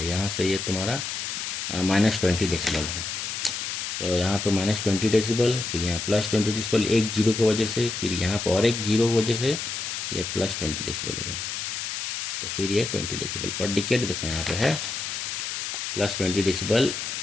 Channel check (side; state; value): left; noise; hiss, 4 dB below the sound